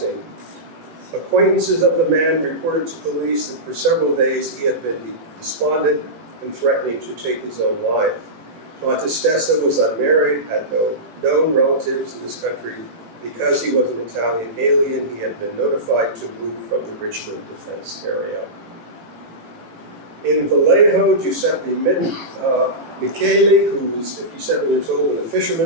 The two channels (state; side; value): late; left; 18 ms